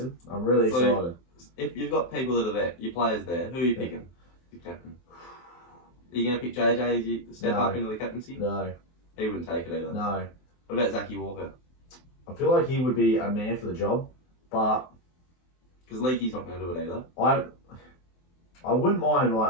I'm really So- excited. If you've got people that are there, your players there, who are you picking? Your captain. Are you going to pick JJ as you step No. up into the captaincy? No, He wouldn't take it either. no. What about Zachy Walker? I feel like he would be a man for the job, but Because Leakey's not going to do it either. I wouldn't mind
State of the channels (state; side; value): late; right; 23 ms